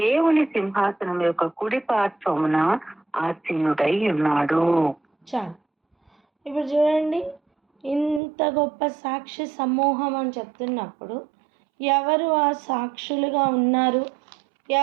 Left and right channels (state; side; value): drops out; left; at 8.2 s